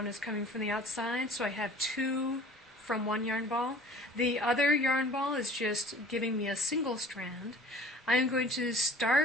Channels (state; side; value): normal; both; correlation 0.47